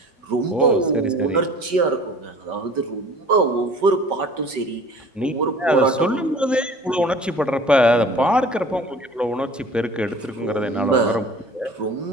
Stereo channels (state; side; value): normal; both; correlation 0.46